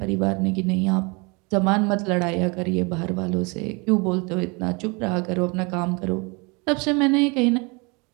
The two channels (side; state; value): left; quieter; 29.5 dB